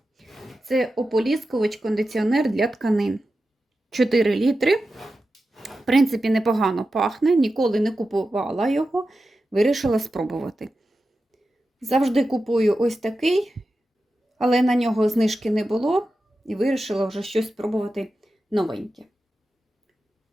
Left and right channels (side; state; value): both; normal; correlation 0.92